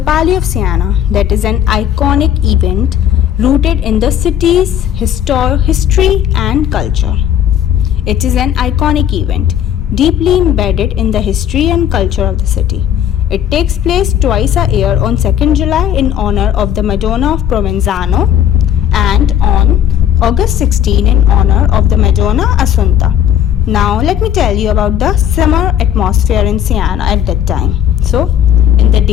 Palio of Siena, that is an iconic event rooted in the city's history and culture. It is an iconic event, deeply embedded in the history and culture of the city. It takes place twice a year on 2nd July in honor of the Madonna of Provenzano and on August 16 in honor of the Madonna Assunta. Now let me tell you about the summer atmosphere in Siena at that time. So, in the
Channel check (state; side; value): quieter; right; 9.9 dB